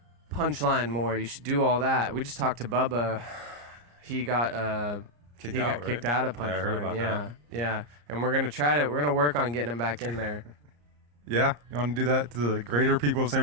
Punchline more. You should do all that. We just talked to Bubba. He got kicked he out, got kicked out of Punchline. Yeah, I heard about that. Yeah. And we're gonna work on getting him back in there. Yeah, you want to do that to the greater people of San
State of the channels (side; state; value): left; late; 34 ms